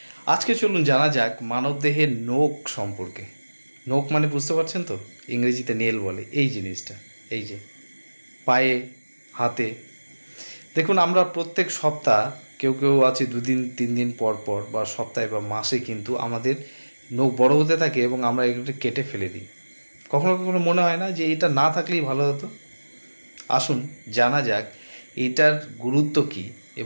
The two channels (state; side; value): inverted; both; correlation -1.00